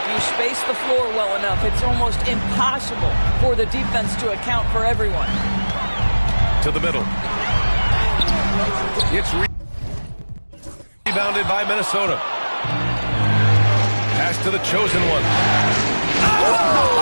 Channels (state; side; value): inverted; both; correlation -1.00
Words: you space the floor well enough, it's almost impossible for the defense to account for everyone. To the middle. It's rebounded by Minnesota. Pass to the chosen one.